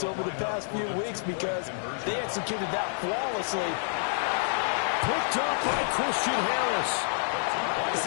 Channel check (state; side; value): silent; right; 59 dB below the other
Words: over the past few weeks, because they executed that flawlessly. Picked up by Christian Harris. It's